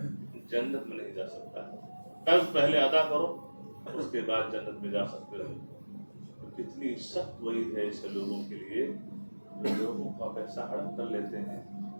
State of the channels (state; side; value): inverted; both; correlation -1.00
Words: جنت میں نہیں جا سکتا۔ قرض پہلے ادا کرو، اس کے بعد جنت میں جا سکتے ہو۔ کتنی سخت وعید ہے ایسے لوگوں کے لیے جو لوگوں کا پیسہ ہڑپ کر لیتے ہیں،